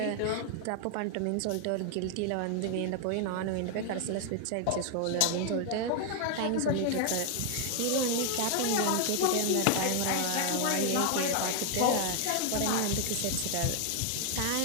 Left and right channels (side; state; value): both; different; correlation 0.00